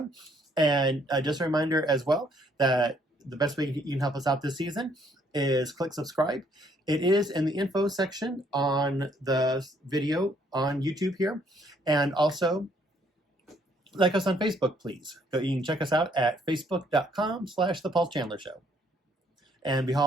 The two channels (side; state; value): both; normal; correlation 0.67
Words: And just a reminder as well that the best way you can help us out this season is click subscribe. It is in the info section on the video on YouTube here. And also like us on Facebook, please. So you can check us out at facebook.com/The Paul Chandler Show. And